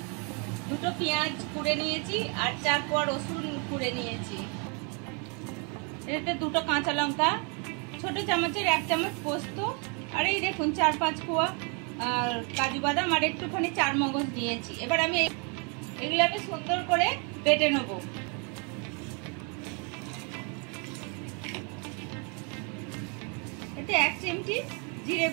দুটো পেঁয়াজ কুড়ে নিয়েছি আর 4 কোয়া রসুন কুড়ে নিয়েছি। এতে দুটো কাঁচা লঙ্কা, ছোট চামচের 1 চামচ পোস্ত, আর এই দেখুন 4-5 কোয়া কাজু বাদাম আর একটুখানি চারমগজ নিয়েছি। এবার আমি এগুলোকে সুন্দর করে বেটে নেব। এতে 1 চিমটি জিরে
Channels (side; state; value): left; quieter; 35.5 dB